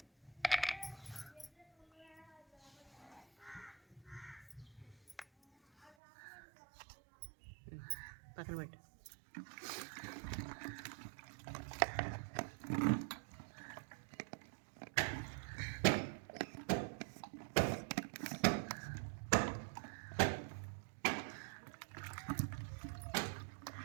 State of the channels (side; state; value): left; drops out; at 5.9 s